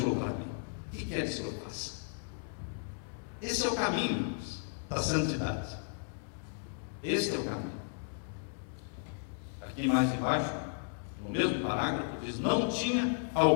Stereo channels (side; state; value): right; silent; digital silence